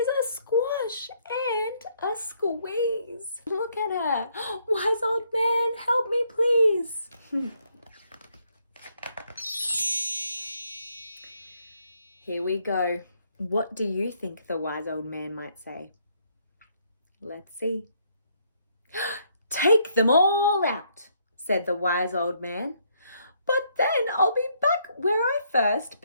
a squash and a squeeze. Look at her. Wise old man, help me please. Here we go. What do you think the wise old man might say? Let's see. Take them all out, said the wise old man. But then I'll be back where I first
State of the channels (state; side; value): inverted; both; correlation -0.71